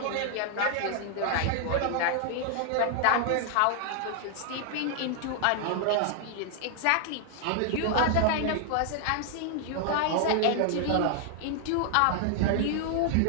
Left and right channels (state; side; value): different; both; correlation 0.00